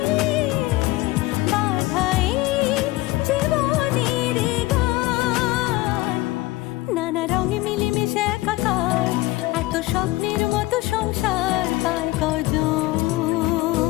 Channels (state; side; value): quieter; right; 19.1 dB